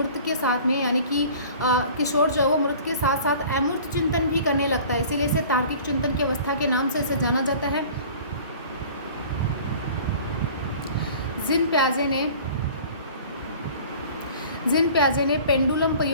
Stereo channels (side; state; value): both; inverted; correlation -0.46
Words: के साथ में, यानी कि किशोर जो है वो मूर्त के साथ साथ अमूर्त चिंतन भी करने लगता है, इसीलिए इसे तार्किक चिंतन की अवस्था के नाम से इसे जाना जाता है। जिन प्याजे ने पेंडुलम